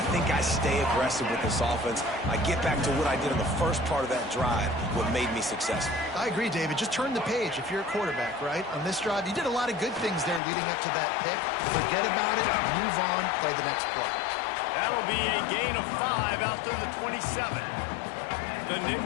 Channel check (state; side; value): drops out; right; at 10.4 s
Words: I think I stay aggressive with this offense. I get back to what I did in the first part of that drive, what made me successful. I agree, David. Just turn the page if you're a quarterback, right? On this drive, you did a lot of good things there leading up to that pick. Forget about it, move on, play the next play. That'll be a gain of 5 out to the 27. The